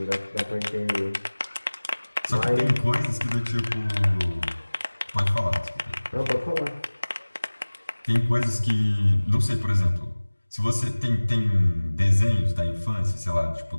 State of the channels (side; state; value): both; inverted; correlation -1.00